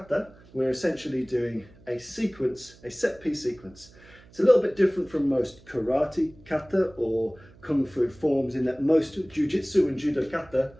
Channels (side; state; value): right; noise; hum, 25 dB below the sound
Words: we're essentially doing a sequence, a set piece sequence. It's a little bit different from most karate kata or kung fu forms in that most jujitsu and judo kata